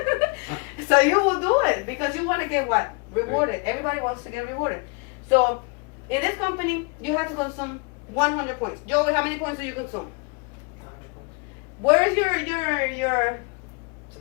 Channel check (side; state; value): right; quieter; 31.9 dB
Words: So you will do it because you want to get what? Rewarded. Everybody wants to get rewarded. So in this company, you have to consume 100 points. Joey, how many points do you consume? 100 points. Where is your It's